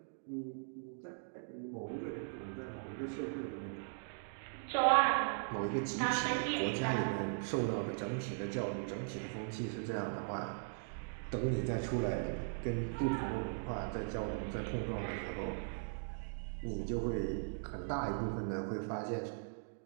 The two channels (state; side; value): silent; left; digital silence